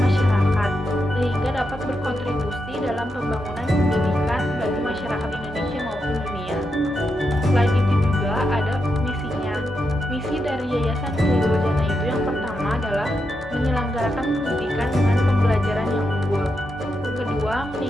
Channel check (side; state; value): both; normal; correlation 0.85